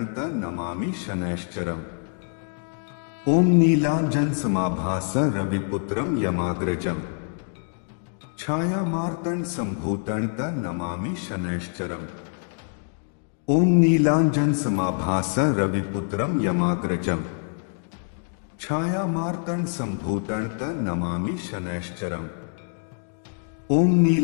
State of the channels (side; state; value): right; silent; 62 dB below the other